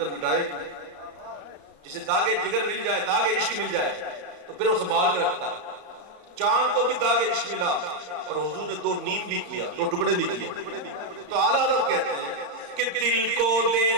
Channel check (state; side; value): late; left; 34 ms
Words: مٹائے گی، جسے داغ جگر مل جائے، داغ عشق مل جائے تو پھر وہ سنبھال کے رکھتا ہے۔ چاند کو بھی داغ عشق ملا اور حضور نے دو نیم بھی کیا، دو ٹکڑے بھی کیا، تو اعلیٰ حضرت کہتے ہیں کہ دل کو دے